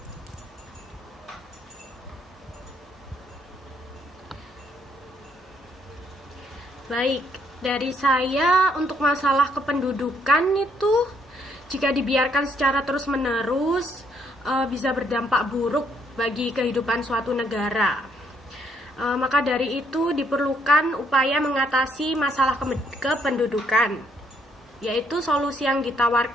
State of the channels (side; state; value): both; normal; correlation 0.70